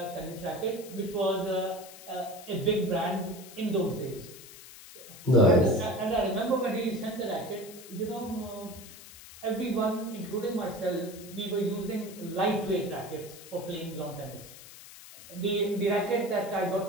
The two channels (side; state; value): left; noise; hiss, 17 dB below the sound